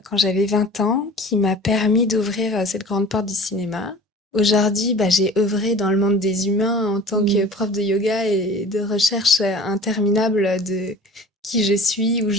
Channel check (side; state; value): both; normal; correlation 0.42